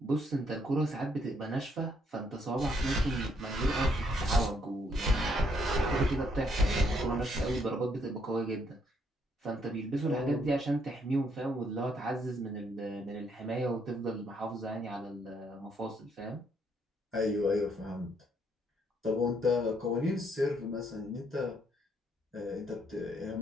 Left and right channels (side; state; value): both; normal; correlation 0.71